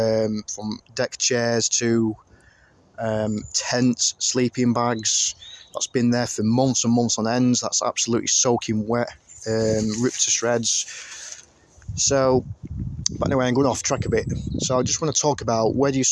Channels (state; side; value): identical; both; correlation 1.00